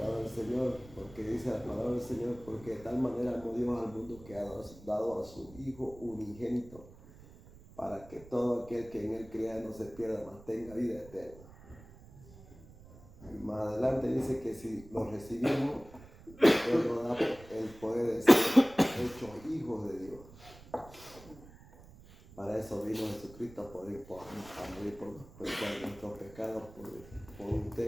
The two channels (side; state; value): right; noise; rumble, 20 dB below the sound